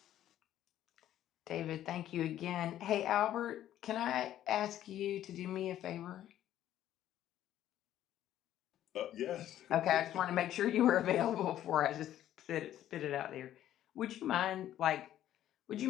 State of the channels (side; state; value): right; quieter; 12.1 dB